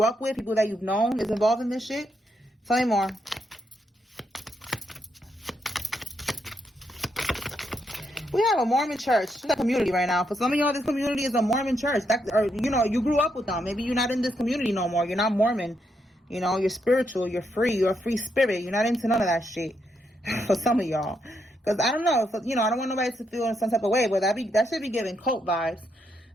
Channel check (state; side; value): normal; both; correlation 0.79